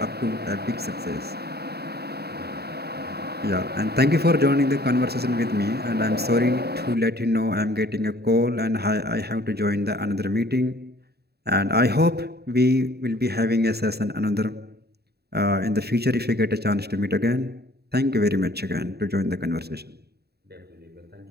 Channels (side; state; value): left; late; 0.47 ms